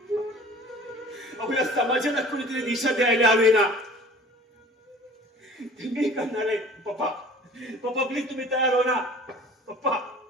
या समाजाला कुणीतरी दिशा द्यायला हवी ना. मी करणार आहे. पप्पा प्लीज तुम्ही तयार हो ना. पप्पा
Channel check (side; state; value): both; normal; correlation 0.46